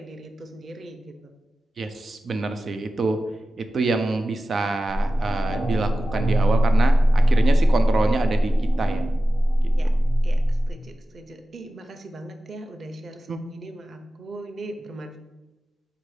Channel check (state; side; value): normal; both; correlation 0.94